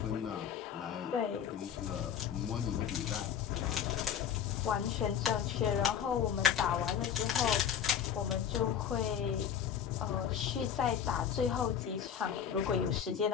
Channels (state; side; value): quieter; right; 8.7 dB